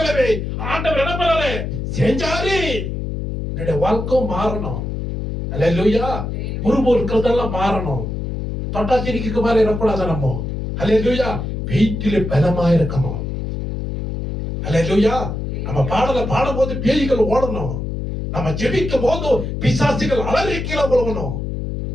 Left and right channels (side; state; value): left; noise; hum, 4 dB below the sound